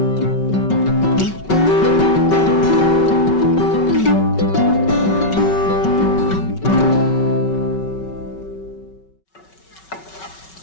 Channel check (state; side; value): late; right; 5.3 ms